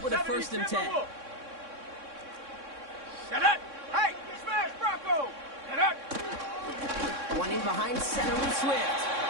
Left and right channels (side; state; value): left; late; 3.6 ms